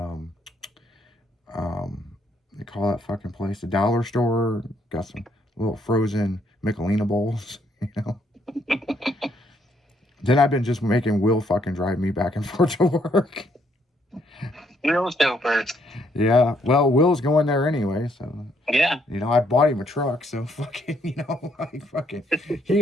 they call that fucking place the dollar store. Got some little frozen Michelina bowls, you know. Then I've been just making Will fucking drive me back and forth to work. Will's doper. Yeah, well, Will's going there anyway, so yeah. You know, I bought him a truck, so fucking, you know, like fucking,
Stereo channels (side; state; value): both; normal; correlation 0.71